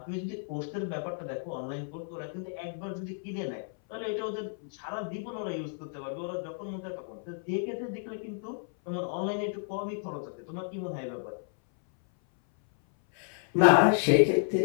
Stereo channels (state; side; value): silent; right; 57 dB below the other